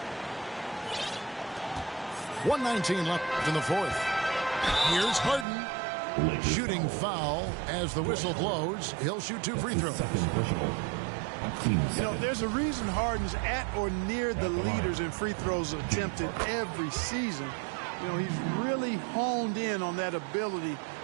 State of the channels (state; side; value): drops out; left; at 5.5 s